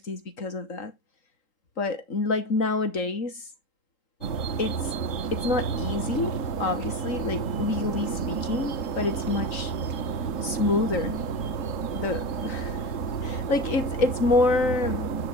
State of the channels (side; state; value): right; late; 3.9 ms